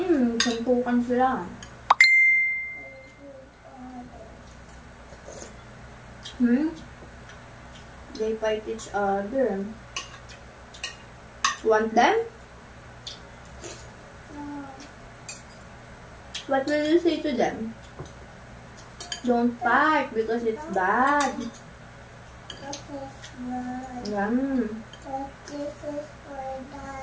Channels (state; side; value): identical; both; correlation 1.00